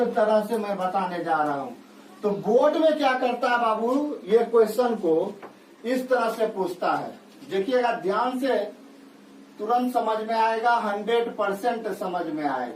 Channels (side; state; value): both; identical; correlation 1.00